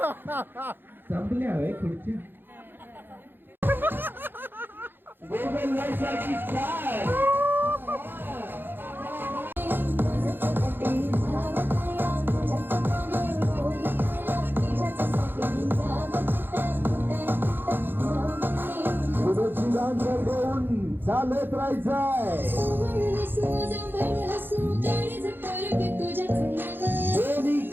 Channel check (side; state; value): left; late; 0.099 ms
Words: संपल्या हवे खुर्च्या. मांजर घेऊन चालत राहायचंय दोन्ही